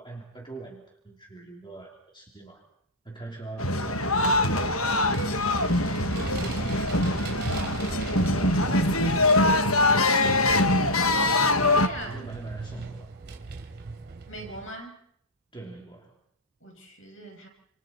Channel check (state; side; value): normal; both; correlation -0.05